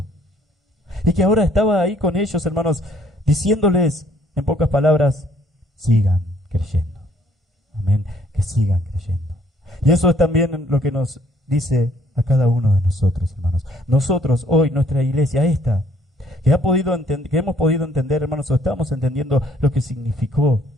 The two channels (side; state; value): both; normal; correlation 0.64